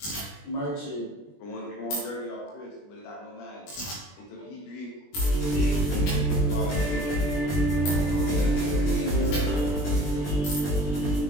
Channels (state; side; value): late; right; 20 ms